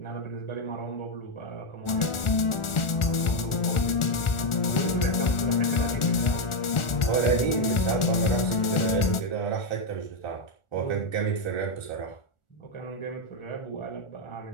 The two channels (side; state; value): right; late; 1.4 ms